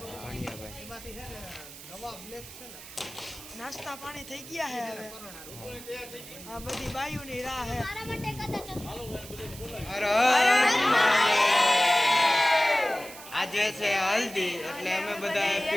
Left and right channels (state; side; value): noise; right; hiss, 15 dB below the sound